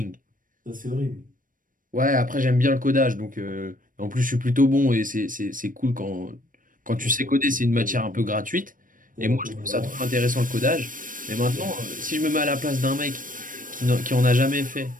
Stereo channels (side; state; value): left; late; 0.39 ms